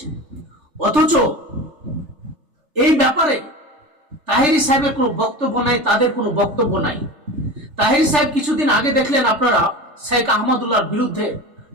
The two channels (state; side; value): late; left; 3.4 ms